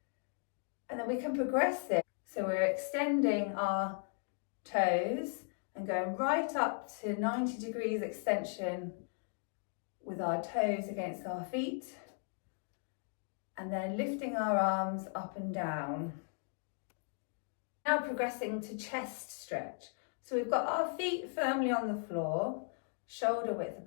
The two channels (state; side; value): silent; right; 53 dB below the other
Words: and then we can progress this. So we're extending our toes and going right up to 90 degrees extension with our toes against our feet, and then lifting our arms up and down. Now progressing to chest stretch. So we've got our feet firmly on the floor, shoulder width